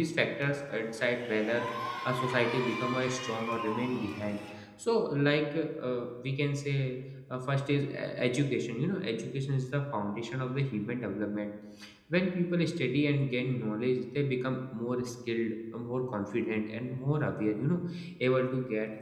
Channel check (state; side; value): identical; both; correlation 1.00